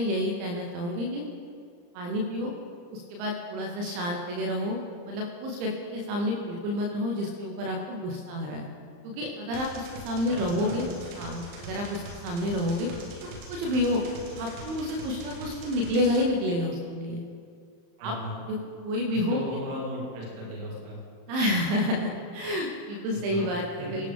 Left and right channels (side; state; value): left; late; 35 ms